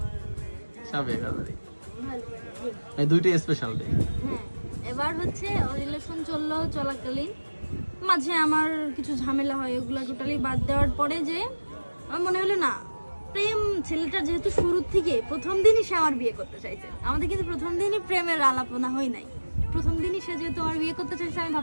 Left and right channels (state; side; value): inverted; both; correlation -1.00